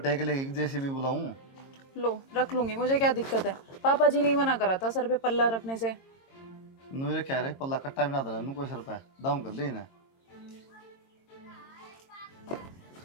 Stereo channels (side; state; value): right; late; 22 ms